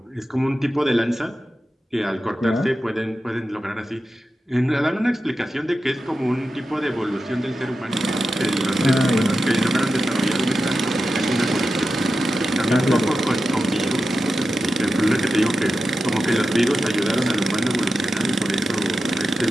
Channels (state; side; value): normal; both; correlation 0.91